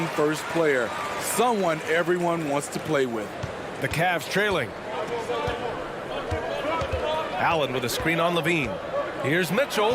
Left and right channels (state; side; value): identical; both; correlation 1.00